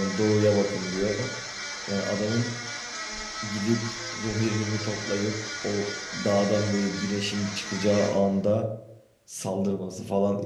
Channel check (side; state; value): both; identical; correlation 1.00